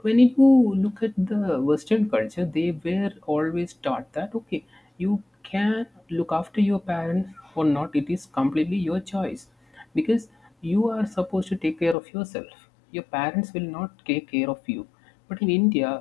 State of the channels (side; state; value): right; drops out; at 12.0 s